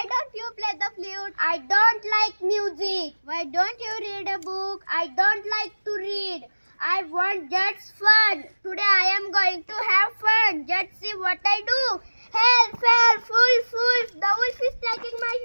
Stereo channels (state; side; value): inverted; both; correlation -1.00